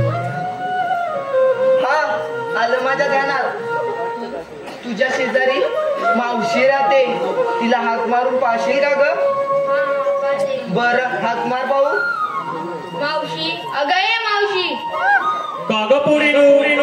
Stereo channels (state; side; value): identical; both; correlation 1.00